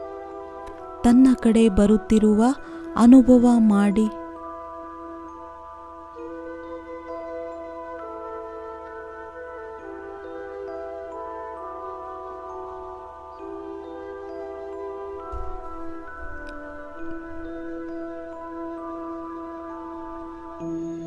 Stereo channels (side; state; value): both; identical; correlation 1.00